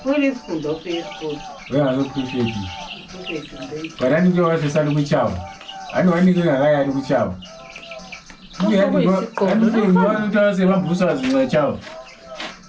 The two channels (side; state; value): both; identical; correlation 1.00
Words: Wewe school do school. wehazoprofeti varani ndio vasesali kuchava ani vanike ngakaya ari kuchava andifanota sevambusa zimwe chavo